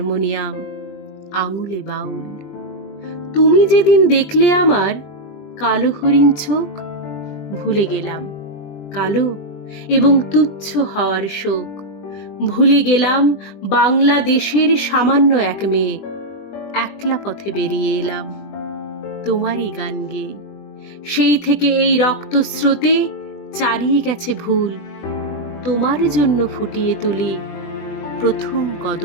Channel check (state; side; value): late; right; 20 ms